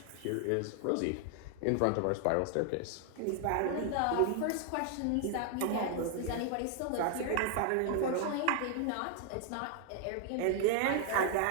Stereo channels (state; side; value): different; both; correlation 0.00